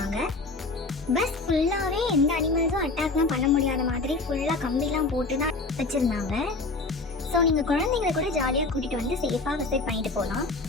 பஸ் ஃபுல்லாவே எந்த அனிமல்ஸும் அட்டாக்லாம் பண்ண முடியாத மாதிரி ஃபுல்லா கம்பிலாம் போட்டு தான் வச்சிருந்தாங்க. ஸோ நீங்கள் குழந்தைங்களை கூட ஜாலியாக கூட்டிகிட்டு வந்து சேஃபாக விசிட் பண்ணிட்டு போகலாம்.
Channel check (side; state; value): right; quieter; 3.5 dB